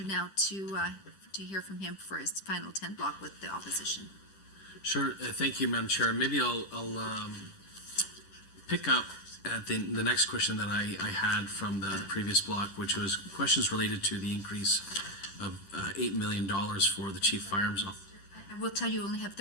now to hear from him for his final 10 block with the opposition. Sure. Thank you, Madam Chair. Maybe I'll pick up at the next question that I had from the previous block, which was questions related to the increase of $8 million for the Chief Firearms Officer. I will tell you only have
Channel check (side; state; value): right; late; 10 ms